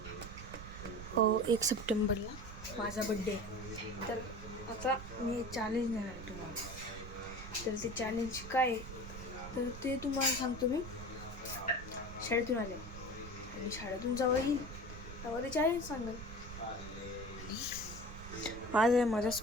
1 सप्टेंबरला माझा बड्डे आहे. तर आता मी चॅलेंज देणार आहे तुम्हाला. तर ते चॅलेंज काय आहे तर ते तुम्हाला सांगतो. मी शाळेतून आले आणि शाळेतून जेव्हा येईल तेव्हा ते चॅलेंज सांगेल. आज आहे माझा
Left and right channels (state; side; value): noise; right; rumble, 11 dB below the sound